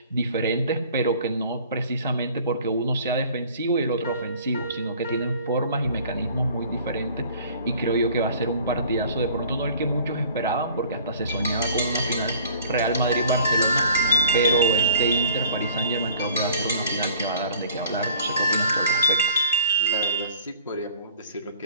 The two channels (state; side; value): inverted; both; correlation -0.50